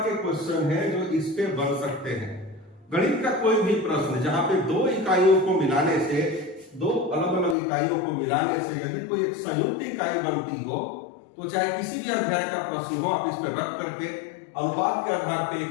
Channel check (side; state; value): right; drops out; at 7.6 s